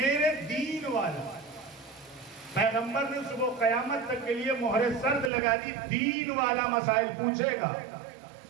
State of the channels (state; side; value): drops out; left; at 5.3 s